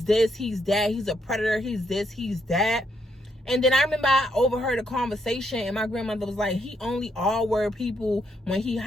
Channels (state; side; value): normal; both; correlation 0.76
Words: this, he's that, he's a predator, he's this, he's that. And then I remember I overheard a conversation, and my grandmother was like, he only R-word people when he